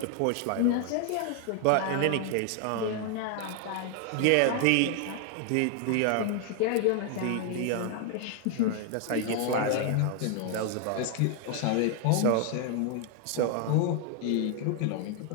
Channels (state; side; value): different; both; correlation 0.00